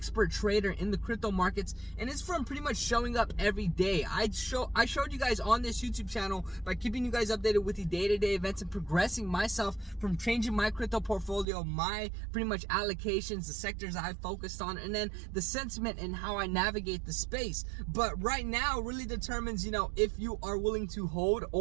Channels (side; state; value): left; drops out; at 11.5 s